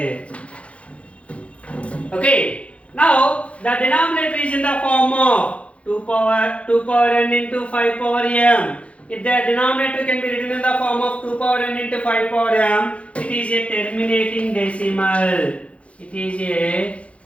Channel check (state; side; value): late; right; 0.062 ms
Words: Okay. Now the denominator is in the form of 2 power n into 5 power m. If the denominator can be written in the form of 2 power n into 5 power m, it is a terminating decimal. It is a